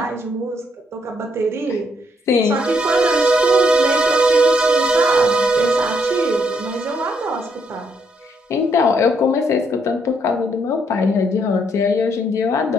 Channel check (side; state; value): both; normal; correlation 0.73